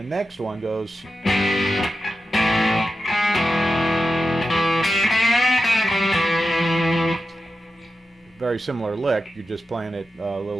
next one goes very similar lick. You're just playing it a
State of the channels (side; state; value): both; normal; correlation 0.91